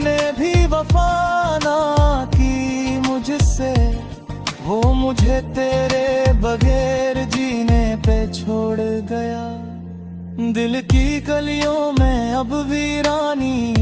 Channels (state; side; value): identical; both; correlation 1.00